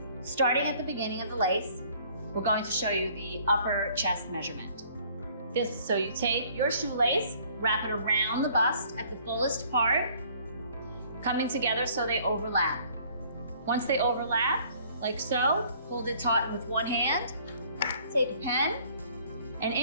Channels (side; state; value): both; inverted; correlation -0.57